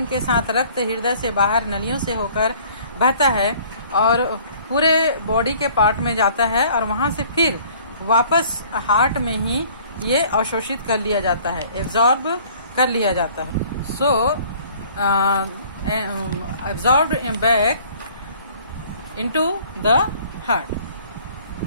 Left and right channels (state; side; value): inverted; both; correlation -0.54